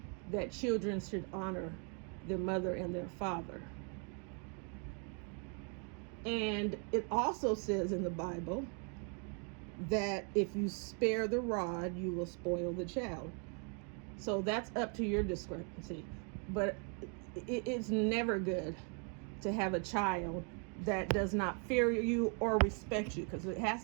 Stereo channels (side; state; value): left; quieter; 39.4 dB